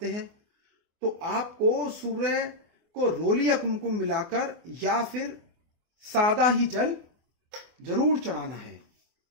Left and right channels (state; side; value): late; left; 24 ms